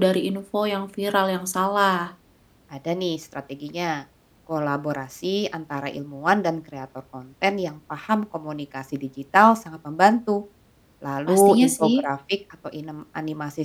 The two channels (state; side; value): identical; both; correlation 1.00